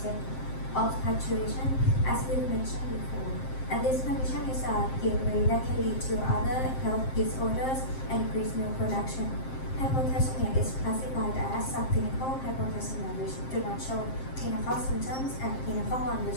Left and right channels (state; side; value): late; right; 7.6 ms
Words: of pasteurization, as we mentioned before. And this condition is a gateway that can lead to other health disorders and increased milk production. Hypocalcemia is classified as subclinical hypocalcemia, which do not show clinical symptoms, and clinical one,